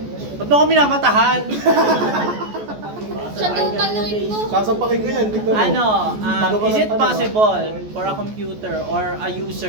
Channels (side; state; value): left; late; 14 ms